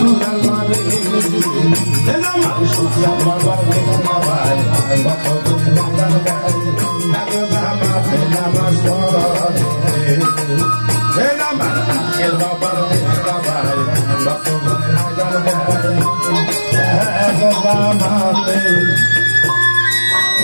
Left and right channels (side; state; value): both; inverted; correlation -1.00